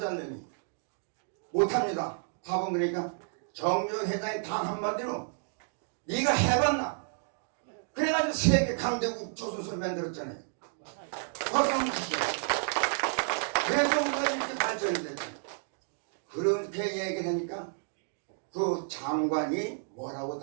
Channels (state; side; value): silent; left; digital silence